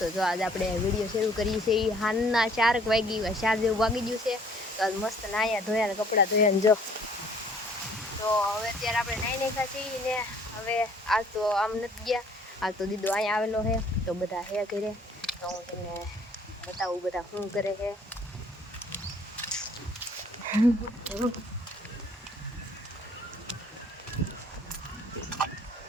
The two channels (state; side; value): normal; both; correlation 0.58